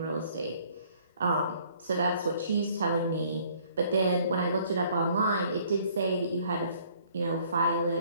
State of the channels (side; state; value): both; inverted; correlation -0.60